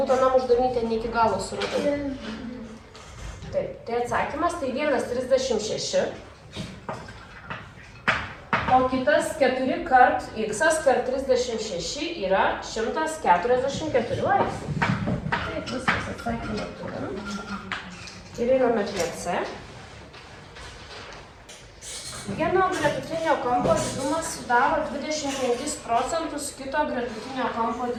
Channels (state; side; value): identical; both; correlation 1.00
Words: anam uždavinį ten ne iki galo suradau. Taip, tai atsakymas tai 1,36. O kitas 4 kart x kart 36 yra 144 laipsnių. Taip, viskas atsakymą turim. Ir einame prie C. Vieno gretutinio kampo didumas sudaro 25% kito gretutinio kampo